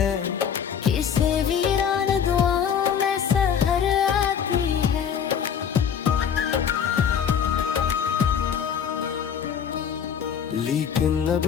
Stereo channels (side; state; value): right; quieter; 7.9 dB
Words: किसे वीरान दुआओं में सहर आती है। लेकिन अब